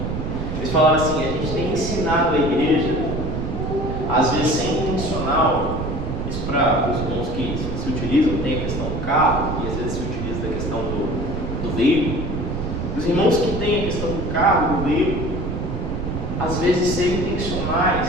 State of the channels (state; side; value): noise; right; rumble, 3 dB below the sound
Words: Eles falaram assim: a gente tem ensinado a igreja, às vezes sem intencional, isso para os irmãos que se utilizam, tem a questão do carro, e às vezes se utiliza da questão do veículo. Os irmãos que têm a questão do carro, do veículo, às vezes serem